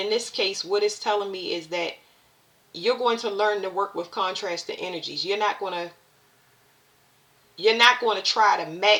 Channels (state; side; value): identical; both; correlation 1.00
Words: this case, what it's telling me is that you're going to learn to work with contrasting energies. You're not going to try to